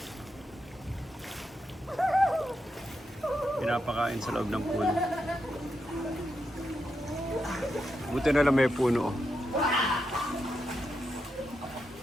Pinapakain sa loob ng pool. Buti na lang may puno. Oh.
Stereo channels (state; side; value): normal; both; correlation 0.84